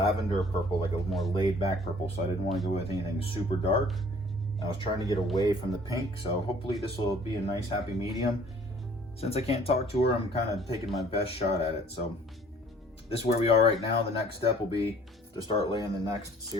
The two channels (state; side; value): normal; both; correlation 0.54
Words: purple, like a more laid back purple. So I didn't want to go with anything super dark. I was trying to get away from the pink. So hopefully this will be a nice happy medium. Since I can't talk to her, I'm kind of taking my best shot at it. So this is where we are right now. The next step will be to start laying the next